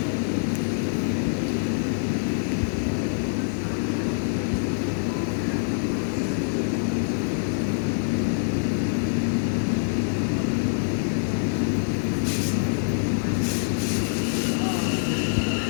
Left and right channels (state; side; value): silent; right; digital silence